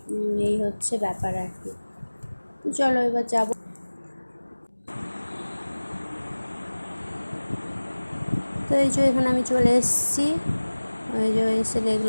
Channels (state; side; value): inverted; both; correlation -1.00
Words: এই হচ্ছে ব্যাপার আর কি। তো চলো এবার যাব। তো এই যে এখানে আমি চলে এসেছি, ওই যে এসে